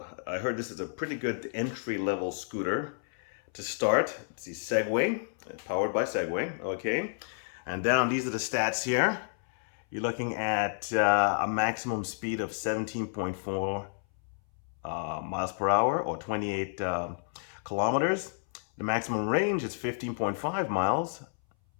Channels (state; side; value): silent; right; 57 dB below the other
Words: I heard this is a pretty good entry-level scooter to start. It's the Segway, powered by Segway, okay? And down, these are the stats here. You're looking at a maximum speed of 17.4 miles per hour, or 28 kilometers. The maximum range is 15.5 miles,